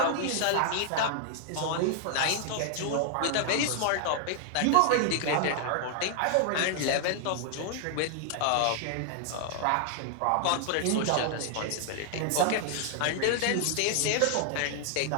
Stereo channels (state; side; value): different; both; correlation 0.00